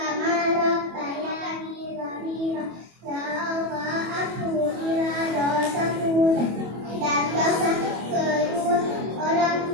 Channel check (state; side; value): late; left; 25 ms